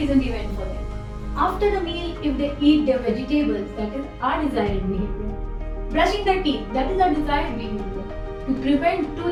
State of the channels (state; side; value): identical; both; correlation 1.00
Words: event for them. After the meal, if they eat their vegetables, that is undesired behavior. Brushing their teeth, that is a desired behavior. To prevent